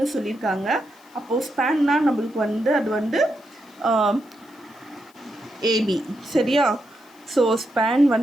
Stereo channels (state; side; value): noise; left; hiss, 30 dB below the sound